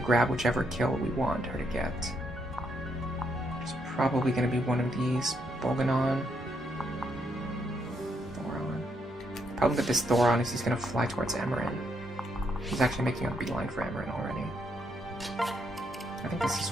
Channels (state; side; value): normal; both; correlation 0.76